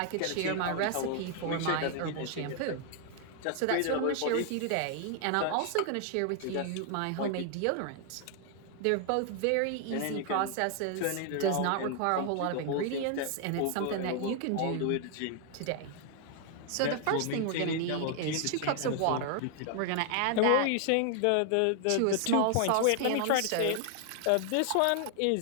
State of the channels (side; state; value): both; different; correlation 0.00